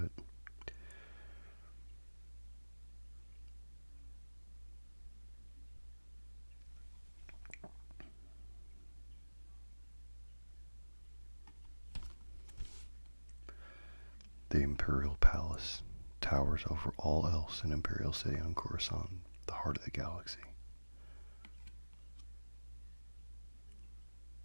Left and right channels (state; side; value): inverted; both; correlation -1.00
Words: The Imperial Palace towers over all else in Imperial City on Coruscant, the heart of the galaxy.